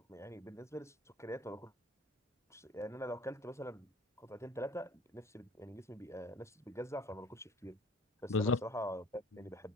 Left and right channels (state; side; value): normal; both; correlation 0.49